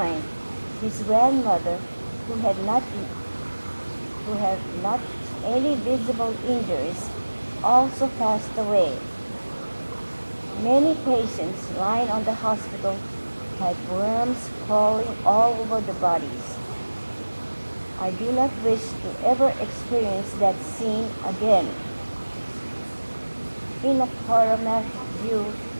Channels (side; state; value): both; inverted; correlation -1.00